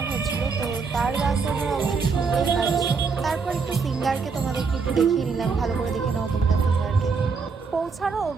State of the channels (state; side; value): quieter; left; 5.0 dB